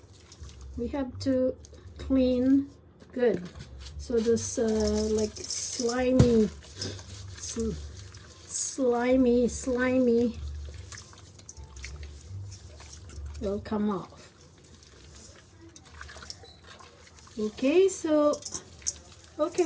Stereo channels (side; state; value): both; identical; correlation 1.00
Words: we have to clean good. So this like slimy will come off. Okay, so